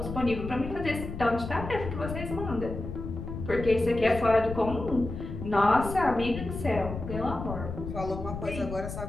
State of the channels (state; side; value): noise; left; rumble, 8 dB below the sound